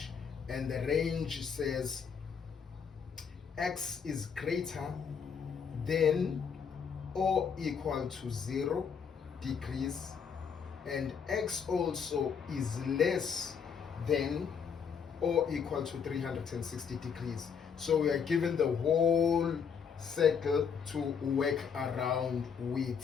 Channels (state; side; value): quieter; right; 6.7 dB